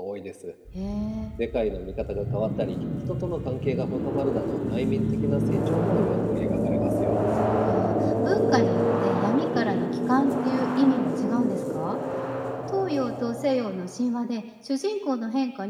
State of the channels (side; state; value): both; identical; correlation 1.00